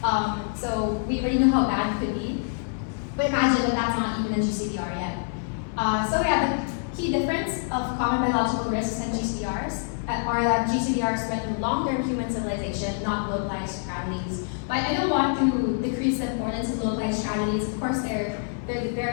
So we already know how bad it could be, but imagine that that's not even a GCBR yet. So yeah, the key difference of common biological risks and GCBRs are that GCBRs threaten long-term human civilization, not localized tragedies. But I don't want to decrease the importance of localized tragedies. Of course, they're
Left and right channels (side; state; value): right; silent; digital silence